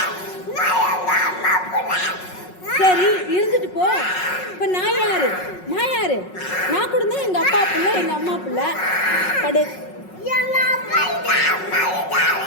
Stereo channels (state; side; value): late; right; 5.4 ms